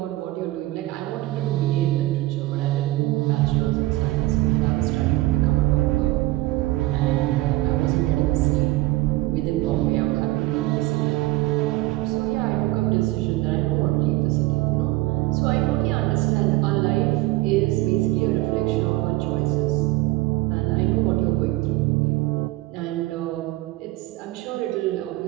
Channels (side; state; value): left; quieter; 18.9 dB